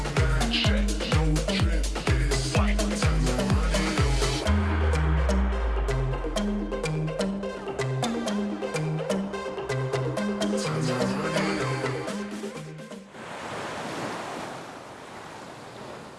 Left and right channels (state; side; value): identical; both; correlation 1.00